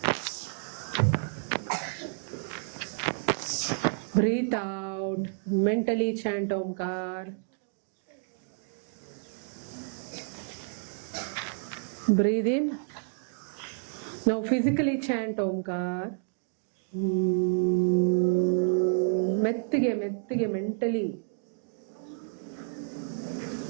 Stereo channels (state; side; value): silent; left; digital silence